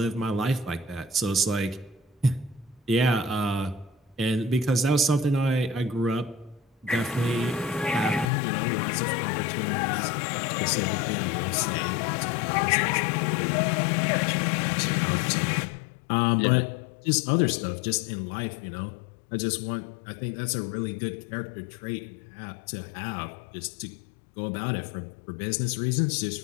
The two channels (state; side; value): drops out; right; at 8.3 s